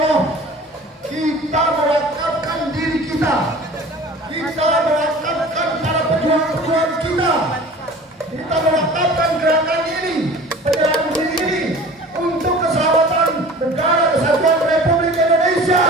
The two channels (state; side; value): normal; both; correlation 0.42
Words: kita mewakafkan diri kita mewakafkan para pejuang-pejuang kita mewakafkan gerakan ini, penyerahan diri ini untuk keselamatan negara kesatuan Republik Indonesia.